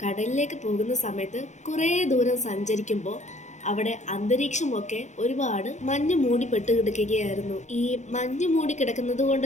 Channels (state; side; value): late; right; 0.34 ms